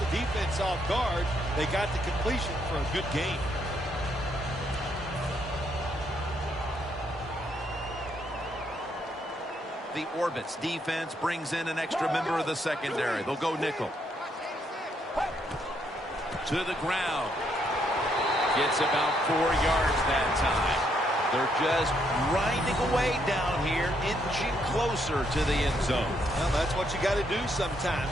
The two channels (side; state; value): both; normal; correlation 0.74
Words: defense off guard. They got the completion for a good game. The Orbits defense brings in an extra member of the secondary. They'll go nickel. To the ground. Gets about 4 yards that time. They're just grinding away down here, inching closer to the end zone. Well, that's what you got to do